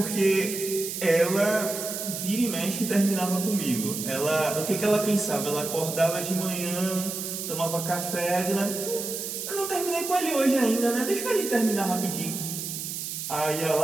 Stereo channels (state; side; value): noise; right; hiss, 5 dB below the sound